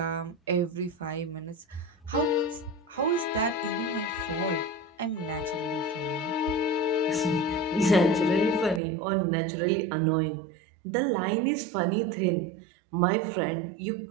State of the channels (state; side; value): drops out; left; at 8.8 s